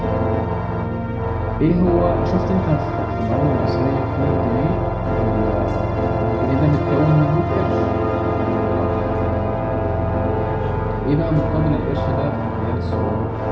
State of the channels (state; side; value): identical; both; correlation 1.00